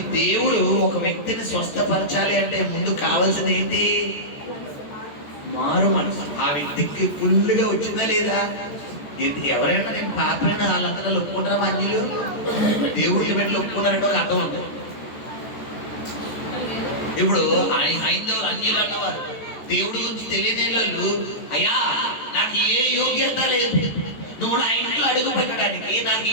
దేవుడు ఒక వ్యక్తిని స్వస్థపరచాలి అంటే ముందు కావాల్సింది ఏంటి? మారు మనసు. ఆ వ్యక్తికి ఫుల్గా వచ్చిందా లేదా? ఎవరైనా నేను పాపైన వాళ్ళందరూ ఒప్పుకుంటారా? అన్యులు దేవుడిని పెట్టి ఒప్పుకున్నారంటే ఒక అర్థం ఉంటుంది. ఇప్పుడు హైందవులు అన్యులు అన్నవారు దేవుడి గురించి తెలియని వాళ్ళు, అయ్యా నాకు ఏ యోగ్యత లేదు, నువ్వు నా ఇంట్లో అడుగు పెట్టడానికి నాకు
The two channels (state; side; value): late; right; 14 ms